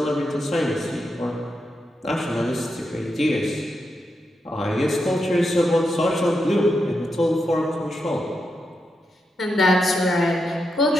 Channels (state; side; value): normal; both; correlation 0.85